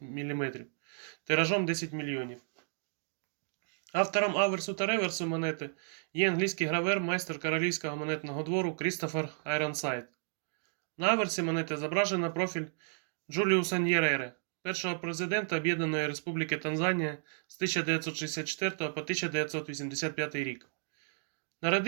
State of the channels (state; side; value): silent; left; digital silence